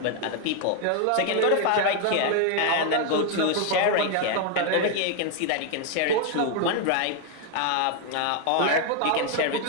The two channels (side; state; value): both; different; correlation 0.00